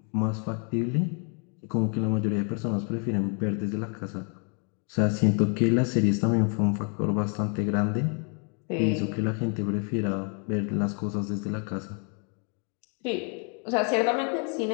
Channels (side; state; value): right; quieter; 39.6 dB